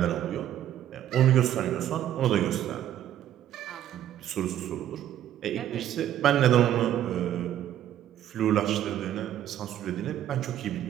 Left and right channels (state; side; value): quieter; left; 11.6 dB